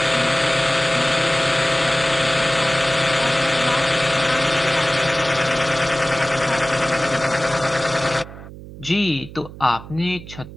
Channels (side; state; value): right; noise; hum, 15 dB below the sound